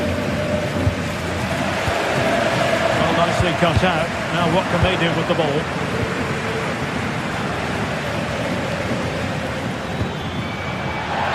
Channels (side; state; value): both; identical; correlation 1.00